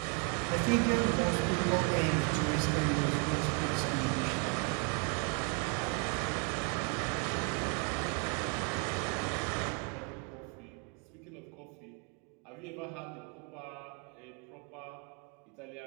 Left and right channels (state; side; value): quieter; left; 34.1 dB